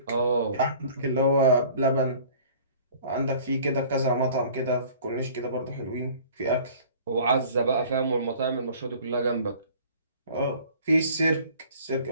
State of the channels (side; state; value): both; inverted; correlation -0.49